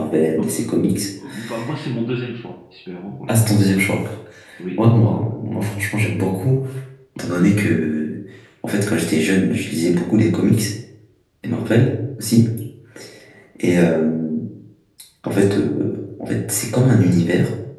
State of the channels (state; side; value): identical; both; correlation 1.00